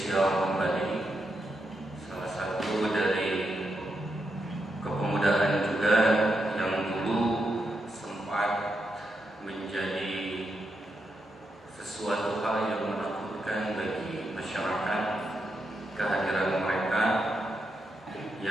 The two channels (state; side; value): normal; both; correlation 0.84